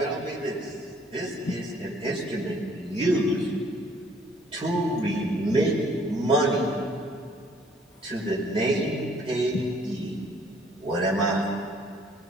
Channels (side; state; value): both; normal; correlation 0.61